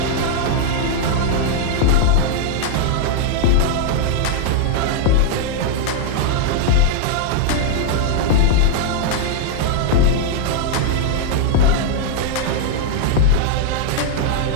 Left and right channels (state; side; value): different; both; correlation -0.01